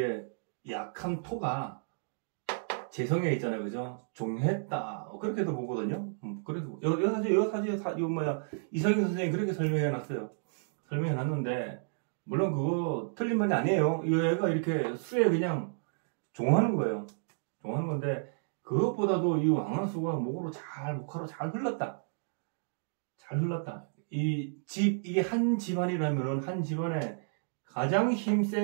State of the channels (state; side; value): silent; left; digital silence